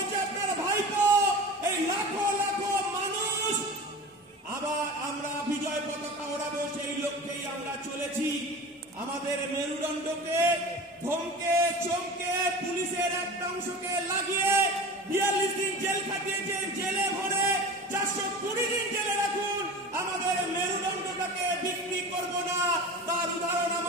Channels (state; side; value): normal; both; correlation 0.34